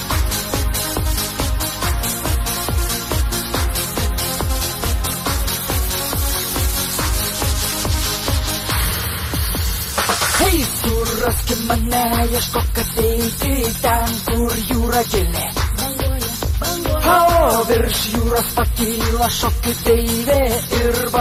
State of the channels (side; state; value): both; identical; correlation 1.00